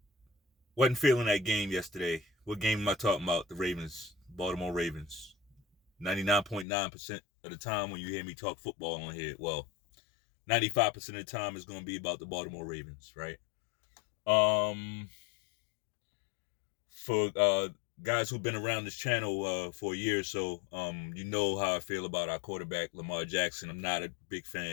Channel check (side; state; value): right; drops out; at 6.7 s